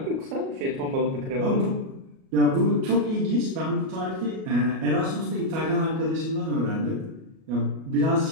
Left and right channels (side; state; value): left; late; 37 ms